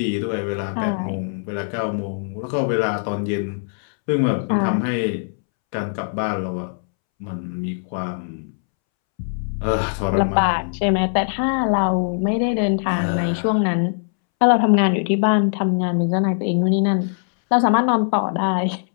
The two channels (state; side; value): silent; right; 65 dB below the other